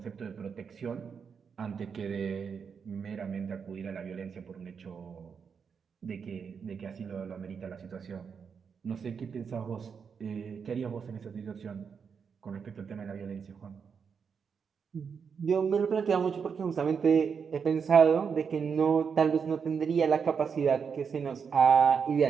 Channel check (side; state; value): left; quieter; 6.3 dB